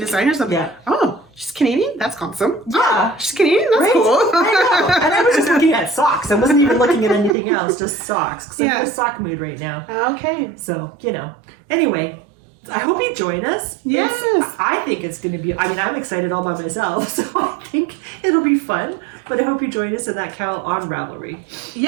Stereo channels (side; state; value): left; drops out; at 7.4 s